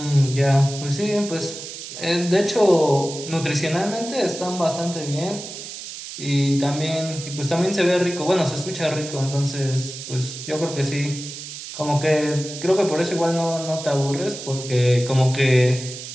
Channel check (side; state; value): right; noise; hiss, 10 dB below the sound